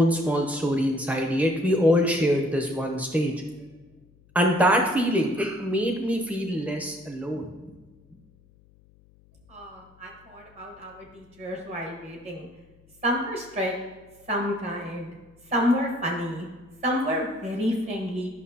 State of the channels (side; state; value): left; noise; hum, 29 dB below the sound